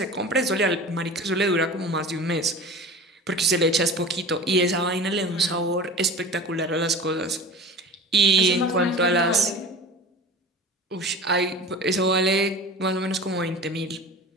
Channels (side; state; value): both; normal; correlation 0.36